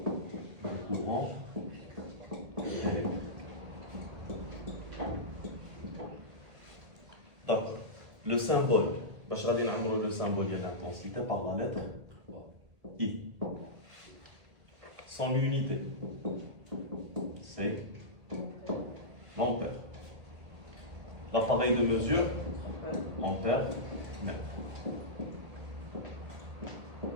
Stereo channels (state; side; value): late; left; 1.8 ms